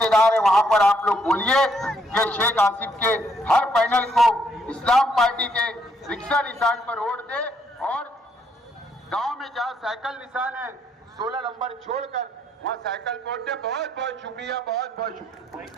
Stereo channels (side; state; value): both; normal; correlation 0.71